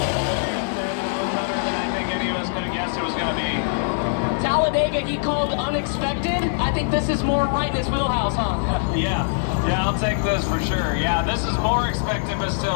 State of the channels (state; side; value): silent; right; digital silence